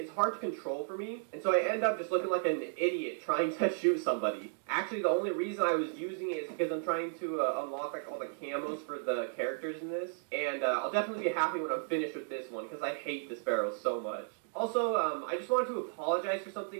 hard to control for me, and so I end up just looking like an idiot trying to shoot somebody. Actually, the only reason I was using it is because I'm trying to unlock all the camos for the characters in this, and I'll definitely be happy when I'm finished with this one, because I hate the Sparrow so much. Also, I just wanted to apologize for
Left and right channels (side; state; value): left; silent; digital silence